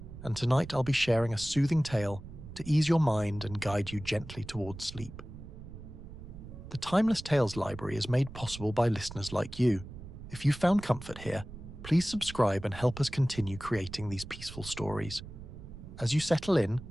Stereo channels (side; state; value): right; noise; rumble, 13 dB below the sound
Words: and tonight I'll be sharing a soothing tale to ease your mind and guide you gently towards sleep. The Timeless Tales Library is made possible by listeners like you. If you found comfort here, please subscribe and help us continue creating these peaceful stories. As you settle in,